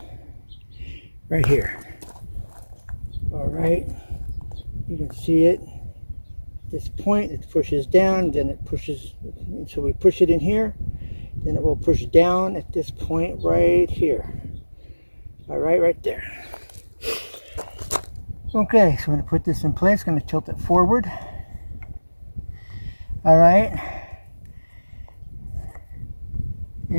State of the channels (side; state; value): both; inverted; correlation -1.00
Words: Right here. All right, you can see it. At this point, it pushes down, then it pushes, so we push it in here, then it will push down at this point right here. All right, right there. Okay, so I'm going to put this in place, going to tilt it forward. All right.